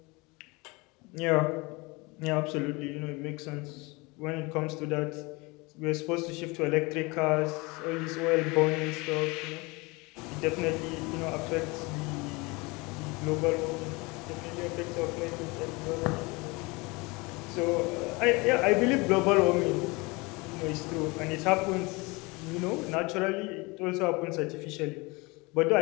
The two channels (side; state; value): right; quieter; 25.6 dB